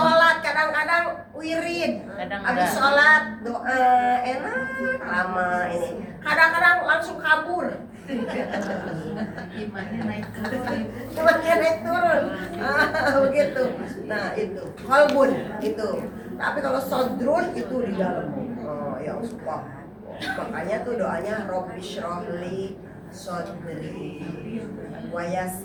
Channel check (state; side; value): identical; both; correlation 1.00